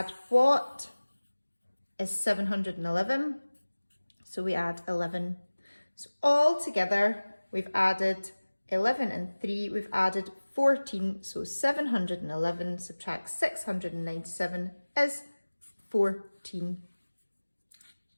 what is 711? So we add 11. So all together, we've added 11 and 3, we've added 14. So 711 subtract 697 is 14.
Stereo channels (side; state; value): both; inverted; correlation -1.00